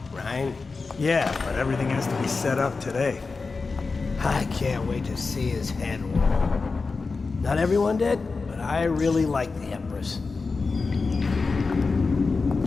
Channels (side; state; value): right; quieter; 4.2 dB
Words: right? Yeah, but everything has to be set up today. I can't wait to see his head roll. Not everyone did, but I really like the Empress.